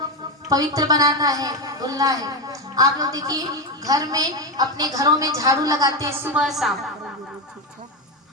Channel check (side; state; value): both; normal; correlation 0.12